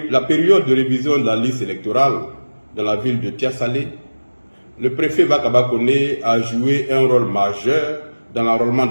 période de révision de la liste électorale dans la ville de Tiasalé, le préfet Bakaba Koné a joué un rôle majeur dans l'enrôlement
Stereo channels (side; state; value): both; inverted; correlation -1.00